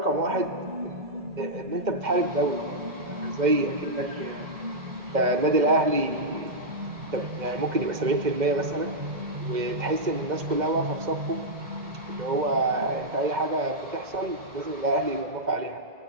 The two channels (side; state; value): left; late; 2.1 ms